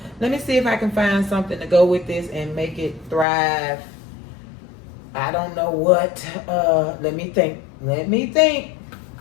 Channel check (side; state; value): right; drops out; at 3.2 s